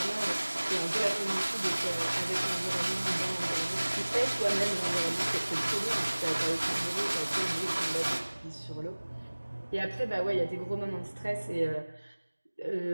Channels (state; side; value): inverted; both; correlation -1.00